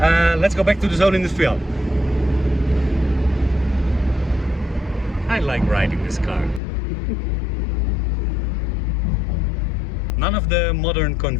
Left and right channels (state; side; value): drops out; right; at 6.6 s